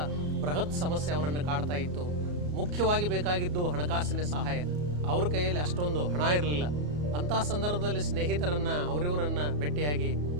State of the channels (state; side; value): late; left; 34 ms